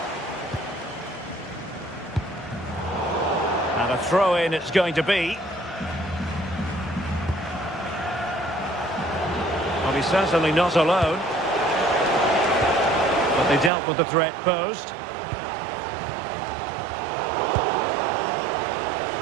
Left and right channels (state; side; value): drops out; left; at 13.7 s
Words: And a throw-in it's going to be. Well, he's certainly not alone. But they dealt with the threat posed.